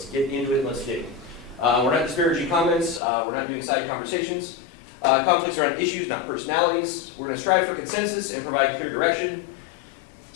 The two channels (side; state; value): right; drops out; at 3.0 s